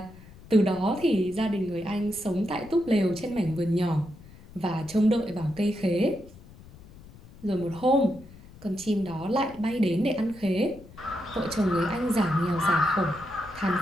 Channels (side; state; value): left; noise; rumble, 20 dB below the sound